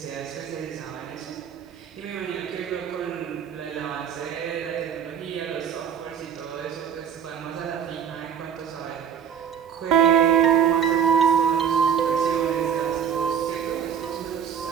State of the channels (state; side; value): quieter; left; 8.1 dB